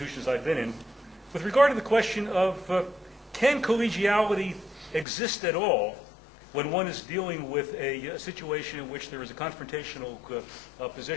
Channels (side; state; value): right; drops out; at 5.1 s